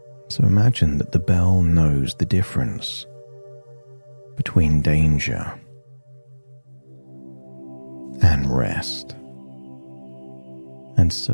So imagine that the bell knows the difference between danger and rest. And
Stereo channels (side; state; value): both; inverted; correlation -1.00